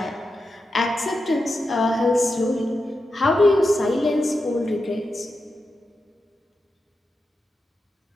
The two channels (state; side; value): normal; both; correlation 0.89